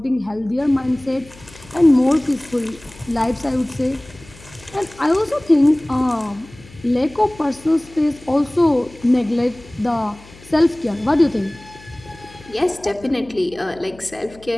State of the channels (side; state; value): left; noise; hum, 22 dB below the sound